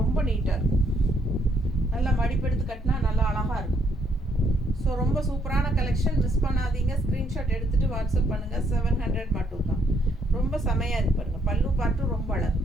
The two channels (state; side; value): normal; both; correlation 0.70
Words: நீட்டாக இருக்கும். நல்லா மடிப்பெடுத்து கட்டினா நல்லா அழகாக இருக்கும். ஸோ ரொம்ப சூப்பரான கலெக்ஷன், மிஸ் பண்ணாதீங்க. ஸ்க்ரீன்ஷாட் எடுத்துகிட்டு வாட்ஸ்அப் பண்ணுங்கள். 700 மட்டும் தான். ரொம்ப செமையாக இருக்கு பாருங்கள். பல்லு பார்ட்டும் ரொம்ப அழகு.